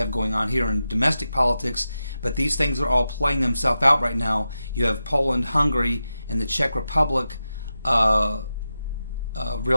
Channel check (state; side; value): inverted; both; correlation -0.91